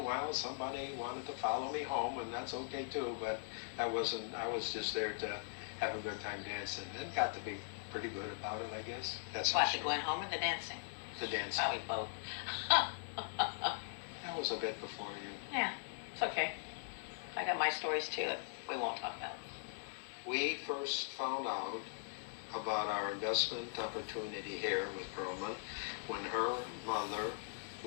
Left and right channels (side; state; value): right; silent; 51 dB below the other